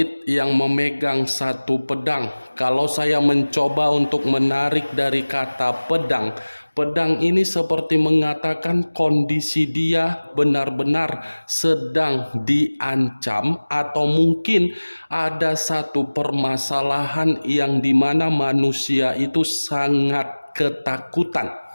yang memegang satu pedang. Kalau saya mencoba untuk menarik dari kata pedang, pedang ini seperti mengatakan kondisi dia benar-benar sedang diancam, atau mungkin ada satu permasalahan yang dimana manusia itu sangat ketakutan.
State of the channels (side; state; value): both; inverted; correlation -1.00